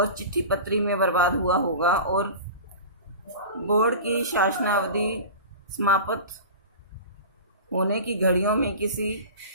चिट्ठी पत्री में बर्बाद हुआ होगा। और बोर्ड की शासनावधि समाप्त होने की घड़ियों में किसी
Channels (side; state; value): both; inverted; correlation -0.33